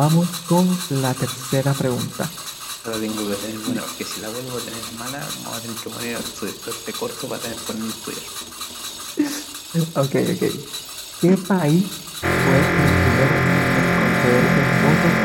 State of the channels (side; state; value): both; identical; correlation 1.00